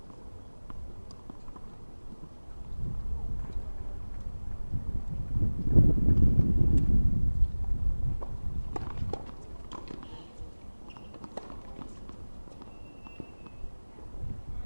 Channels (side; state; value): both; inverted; correlation -1.00